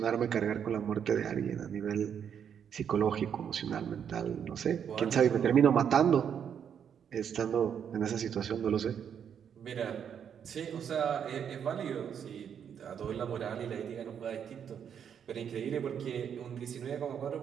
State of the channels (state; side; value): quieter; left; 8.2 dB